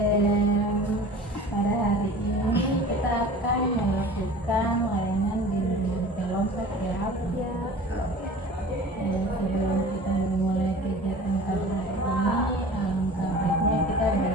Pada hari ini kita akan melakukan layanan bimbingan kelompok ya. Sebelum kita memulai kegiatan pada hari ini, alangkah baiknya kita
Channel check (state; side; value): normal; both; correlation 0.42